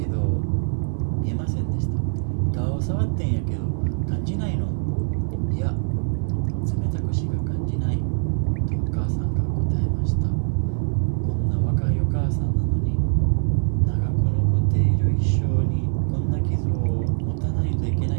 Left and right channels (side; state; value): left; silent; digital silence